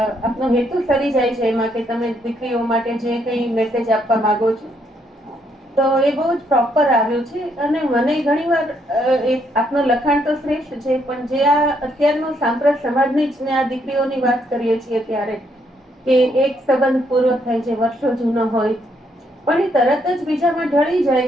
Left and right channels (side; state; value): both; normal; correlation 0.73